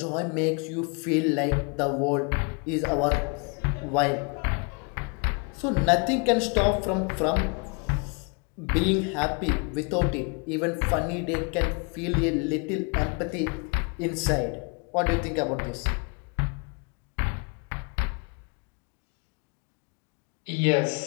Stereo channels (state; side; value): quieter; right; 34.7 dB